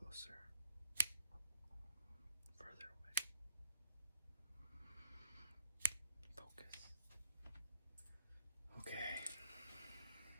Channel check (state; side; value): inverted; both; correlation -0.71